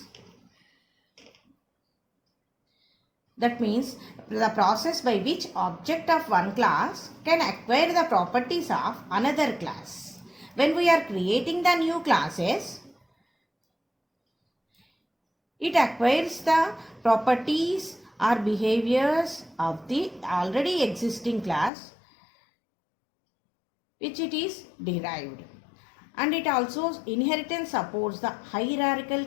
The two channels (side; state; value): right; drops out; at 21.7 s